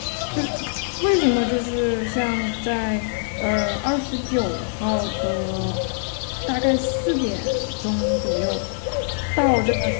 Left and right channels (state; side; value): silent; right; digital silence